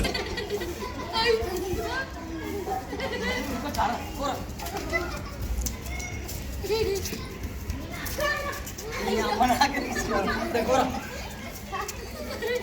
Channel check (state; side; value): identical; both; correlation 1.00